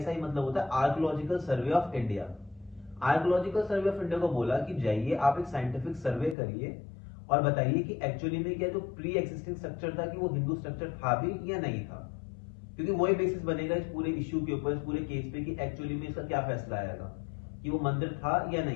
मतलब होता है archaeological survey of India. Archaeological survey of India को बोला कि जाइए आप एक साइंटिफिक सर्वे करिए और बताइए कि एक्चुअली में क्या जो प्री एक्सिस्टिंग स्ट्रक्चर था कि वो हिंदू स्ट्रक्चर था भी या नहीं था, क्योंकि वही बेसिस बनेगा इस पूरे इश्यू के ऊपर, इस पूरे केस पे कि एक्चुअली में इसका क्या फैसला आएगा कि वो मंदिर था या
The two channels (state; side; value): drops out; right; at 6.4 s